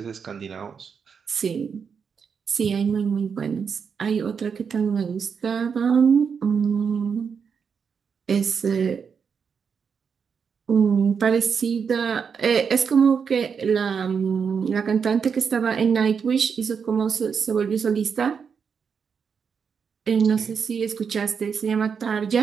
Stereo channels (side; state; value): left; quieter; 6.4 dB